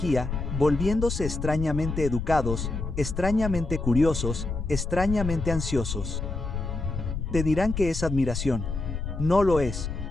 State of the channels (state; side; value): noise; left; rumble, 4 dB below the sound